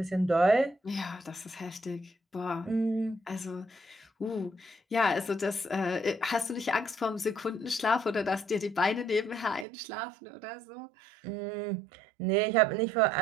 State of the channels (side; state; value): left; drops out; at 9.7 s